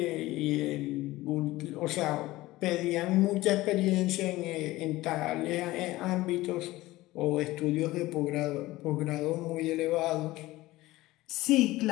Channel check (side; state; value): right; quieter; 18.1 dB